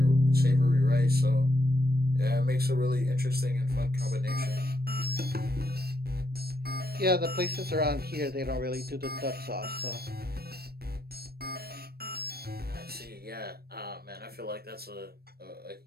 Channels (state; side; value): late; left; 0.46 ms